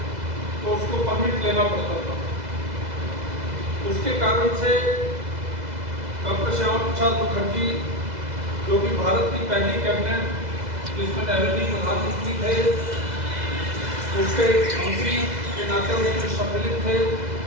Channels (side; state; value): left; late; 2.0 ms